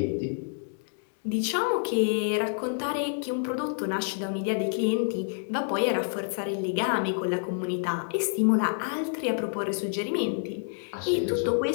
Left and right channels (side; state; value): right; silent; digital silence